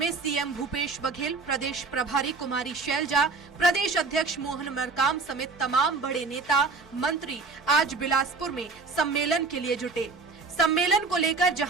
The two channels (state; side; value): quieter; left; 4.2 dB